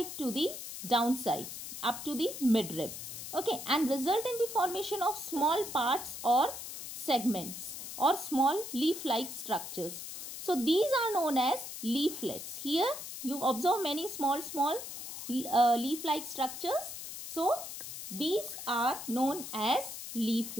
to the downside up to the midrib. Okay, and result in the formation of small parts or segments or small leaf-like structures. So these are known as leaflets. Here you observe many small leaf-like structures. So these are known as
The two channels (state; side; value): noise; left; hiss, 9 dB below the sound